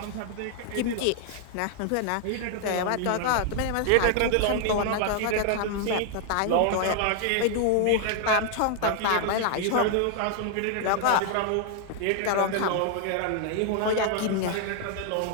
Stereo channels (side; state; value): both; different; correlation 0.00